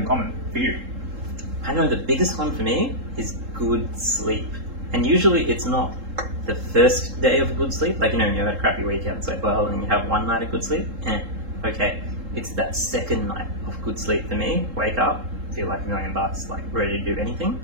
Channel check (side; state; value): left; late; 3.7 ms